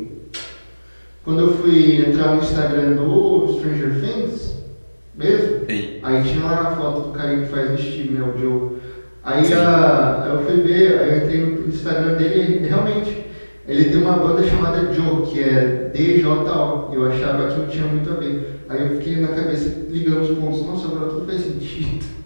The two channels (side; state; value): both; inverted; correlation -1.00